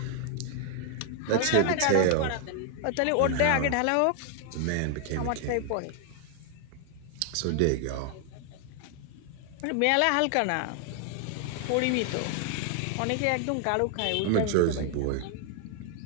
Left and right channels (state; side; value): different; both; correlation 0.00